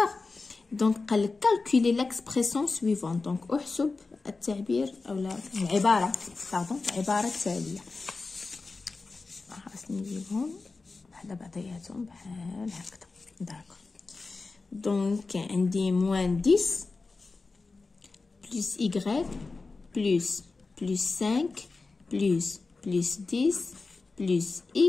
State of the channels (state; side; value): quieter; right; 3.9 dB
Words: دونك قال لك calculer l'expression suivante. دونك احسب التعبير اولا العباره التاليه. خاصني نجيبهم وحده بعضياتهم بحال هكذا. داكور. دونك عندي موان 10 بلس y بلس 5 بلس 10 بلس